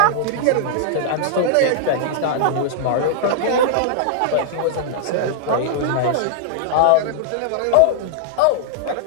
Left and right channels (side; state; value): both; different; correlation -0.01